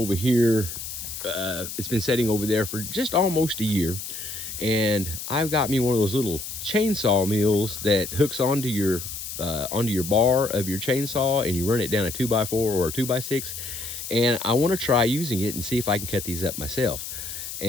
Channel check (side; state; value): left; noise; hiss, 8 dB below the sound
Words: here. It's been setting over there for just almost a year. And I've got me one of those little chainsaw mills that hooks onto your bar of your chainsaw, and you run it down a 2x4 or a 2x6. And I want to try using it and see if I can cut these up myself.